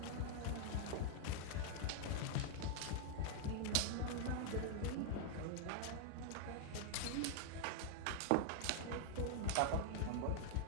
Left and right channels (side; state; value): both; different; correlation 0.00